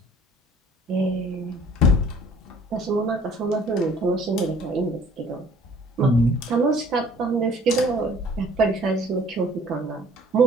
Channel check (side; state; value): both; normal; correlation 0.54